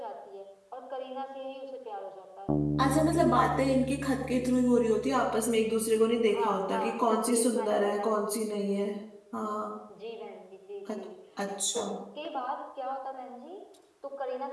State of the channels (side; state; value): both; identical; correlation 1.00